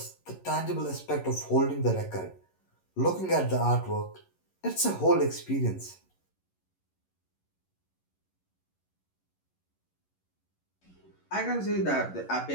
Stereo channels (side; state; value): right; late; 11 ms